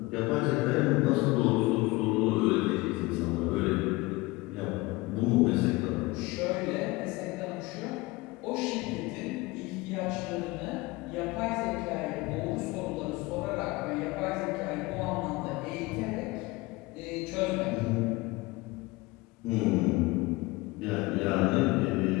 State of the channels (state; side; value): quieter; right; 22.3 dB